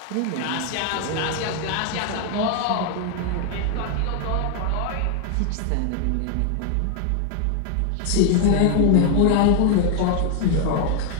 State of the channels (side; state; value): both; different; correlation 0.01